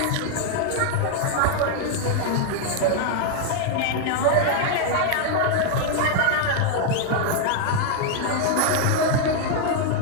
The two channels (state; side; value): different; both; correlation 0.00